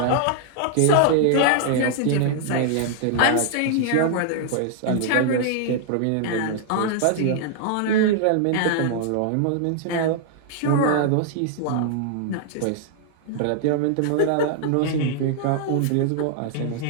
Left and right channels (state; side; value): different; both; correlation -0.01